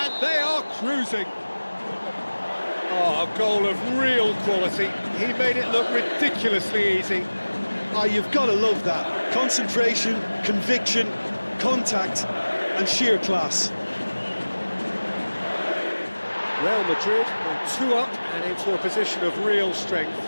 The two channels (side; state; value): both; inverted; correlation -1.00